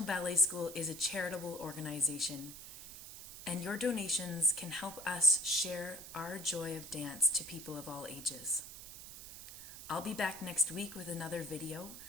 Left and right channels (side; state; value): right; noise; hiss, 12 dB below the sound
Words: Ballet School is a charitable organization, and your donations can help us share our joy of dance to people of all ages. I'll be back next week with another video,